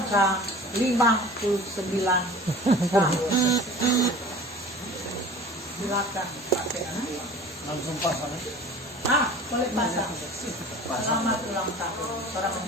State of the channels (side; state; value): both; normal; correlation 0.42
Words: 59 tahun. Silakan Pak Penatua. Langsung pasang. Boleh pasang. Selamat ulang tahun. Seorang